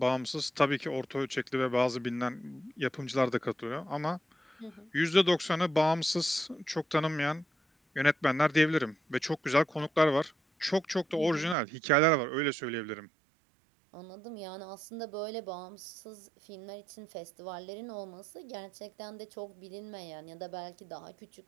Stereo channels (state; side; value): drops out; left; at 11.6 s